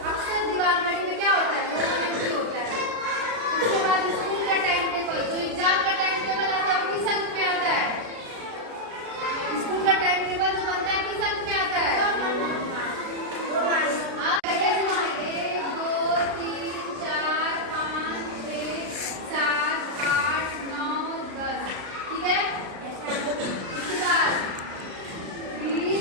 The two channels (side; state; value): left; late; 36 ms